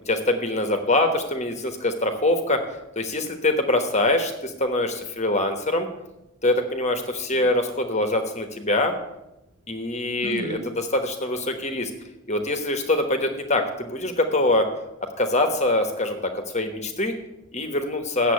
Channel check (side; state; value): both; normal; correlation 0.09